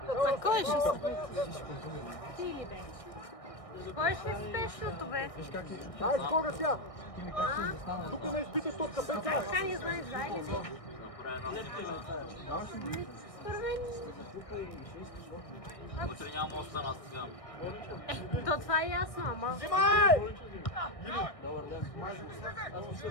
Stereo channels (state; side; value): late; right; 1.6 ms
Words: Кой ще Кой ще спешното, бе? Ай, скоро тя! Тук не изпитай топка, Петя! Така не знаеш, да или не? Според мен... То това е ясно, ама... Взимай!